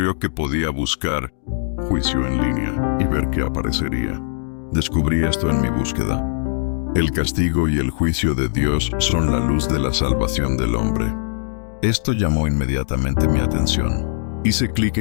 que podía buscar juicio en línea y ver qué aparecería. Descubrí esto en mi búsqueda. El castigo y el juicio de Dios son la luz de la salvación del hombre. Esto llamó inmediatamente mi atención. Hice clic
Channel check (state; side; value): silent; right; digital silence